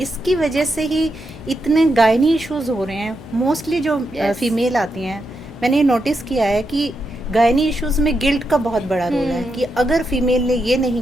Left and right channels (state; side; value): noise; left; hum, 18 dB below the sound